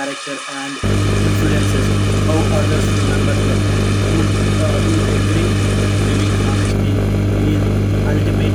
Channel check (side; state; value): both; identical; correlation 1.00